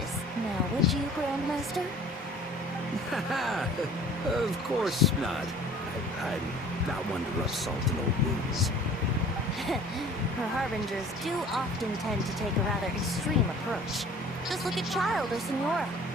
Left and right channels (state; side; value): normal; both; correlation 0.48